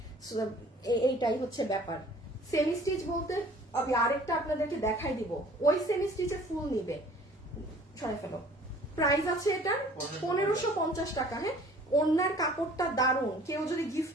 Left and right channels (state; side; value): normal; both; correlation 0.51